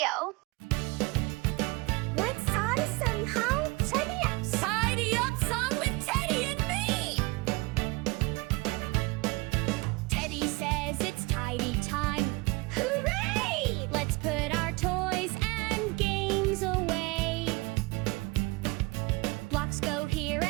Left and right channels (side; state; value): left; quieter; 25.0 dB